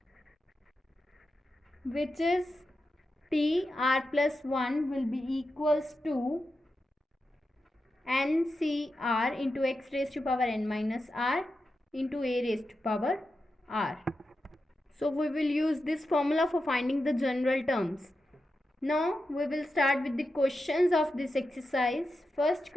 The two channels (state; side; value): normal; both; correlation 0.89